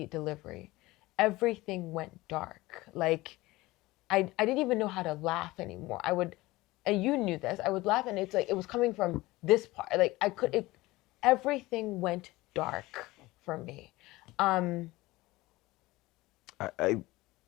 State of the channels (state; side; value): quieter; right; 19.7 dB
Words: delivery. Everything went dark. Like, I didn't even know how to laugh anymore. I would, and you knew this, I would laugh and it's like, it was coming from this part. Like, everything went dark for me. I